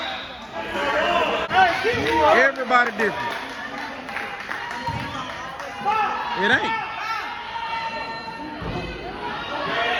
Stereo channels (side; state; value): both; identical; correlation 1.00